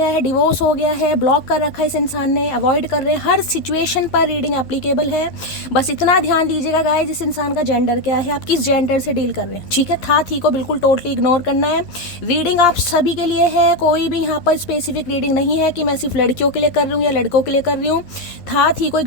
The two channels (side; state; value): right; late; 11 ms